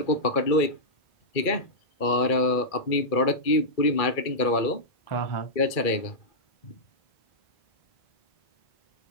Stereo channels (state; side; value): late; right; 2.3 ms